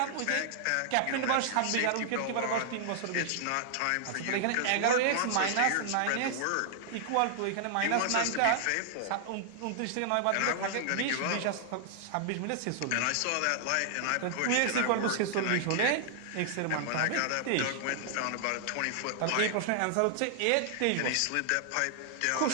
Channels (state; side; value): different; both; correlation -0.01